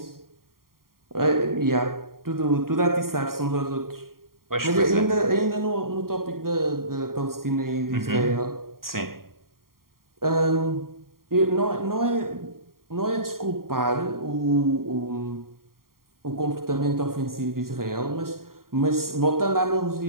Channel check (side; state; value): left; late; 0.92 ms